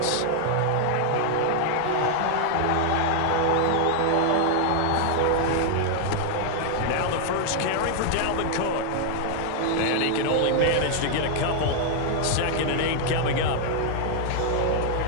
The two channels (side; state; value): both; different; correlation 0.00